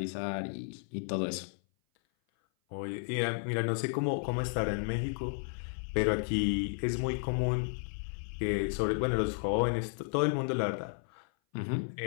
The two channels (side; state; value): right; silent; 56 dB below the other